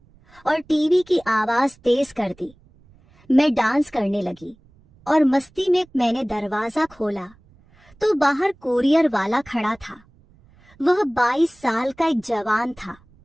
और टीवी की आवाज तेज कर दी। मैं डांस करने लगी और मस्ती में मैंने दरवाजा खोला तो बाहर कुरियर वाला खड़ा था। वह 22 साल का एक जवान था,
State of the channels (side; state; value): right; noise; rumble, 29 dB below the sound